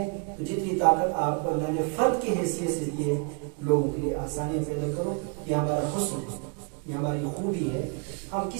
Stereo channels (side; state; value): left; quieter; 35.3 dB